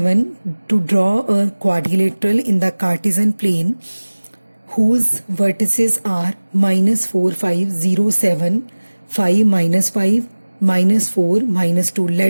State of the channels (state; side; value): inverted; both; correlation -1.00